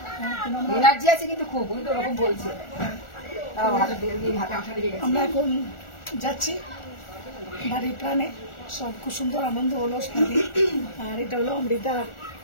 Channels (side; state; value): right; late; 1.4 ms